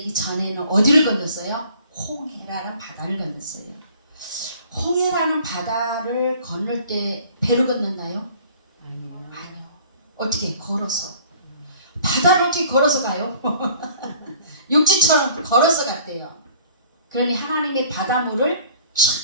전에는 어디를 건넜어요? 홍해라는 바다를 건넜어요. 홍해라는 바다를 건널 때 배로 건넜나요? 아니요. 어떻게? 걸어서. 바다를 어떻게 걸어서 가요? 육지처럼 걸어서 갔대요. 그러니 하나님의 바닷물을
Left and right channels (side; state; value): both; inverted; correlation -0.52